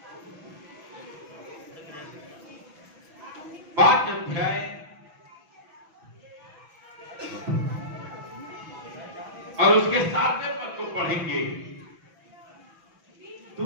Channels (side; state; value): left; late; 6.0 ms